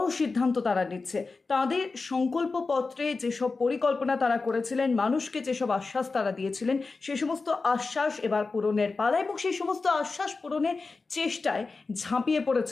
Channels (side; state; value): right; quieter; 4.0 dB